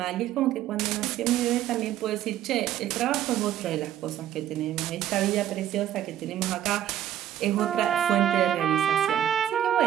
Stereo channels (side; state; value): left; quieter; 11.5 dB